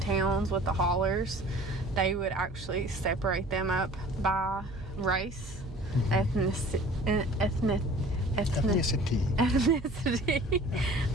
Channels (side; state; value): right; noise; hum, 15 dB below the sound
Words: with the hollers, they would actually separate them up by race, ethnicity.